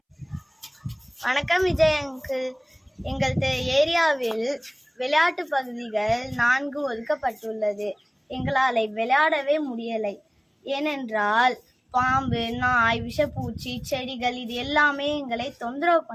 வணக்கம் விஜய் அங்கிள். எங்கள் ஏரியாவில் விளையாட்டு பகுதிகள் 4 ஒதுக்கப்பட்டுள்ளது. எங்களால் விளையாடவே முடியலை. ஏனென்றால் பாம்பு, நாய், விஷப்பூச்சி, செடிகள் இது எல்லாமே எங்களை தொந்தரவு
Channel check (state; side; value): identical; both; correlation 1.00